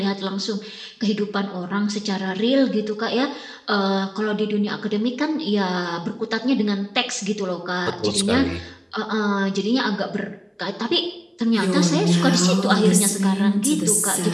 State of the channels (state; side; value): identical; both; correlation 1.00